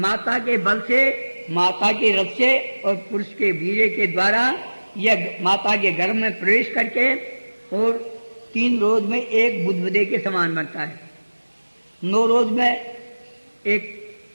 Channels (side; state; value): both; inverted; correlation -1.00